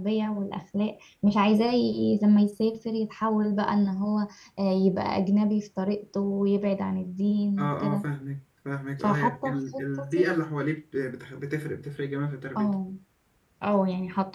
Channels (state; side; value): identical; both; correlation 1.00